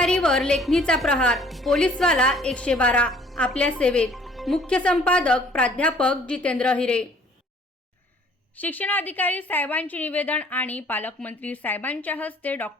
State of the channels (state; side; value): normal; both; correlation 0.56